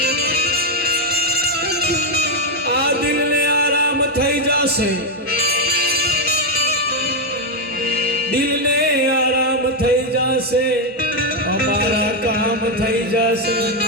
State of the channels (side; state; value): both; normal; correlation 0.03